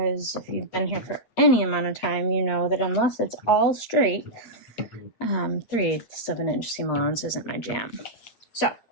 if you've been here for any amount of time, you know that unless it's all straight, 3/8 of an inch seam allowance isn't my jam. So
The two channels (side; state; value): right; late; 8.5 ms